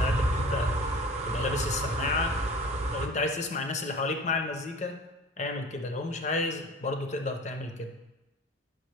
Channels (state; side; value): normal; both; correlation 0.40